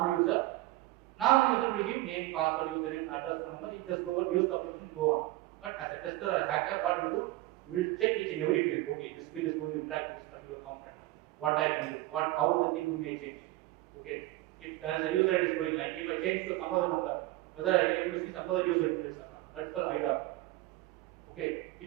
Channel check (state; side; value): quieter; left; 18.1 dB